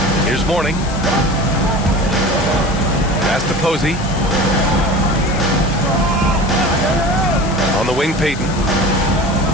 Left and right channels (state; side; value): noise; left; hiss, 14 dB below the sound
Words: Here's Mourning. Pass to Posey. On the wing, Payton.